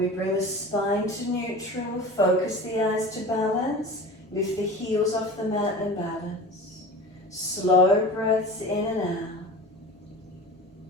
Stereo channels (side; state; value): both; normal; correlation 0.35